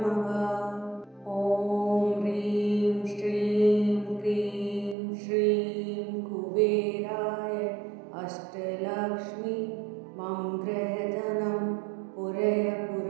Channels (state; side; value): drops out; left; at 5.0 s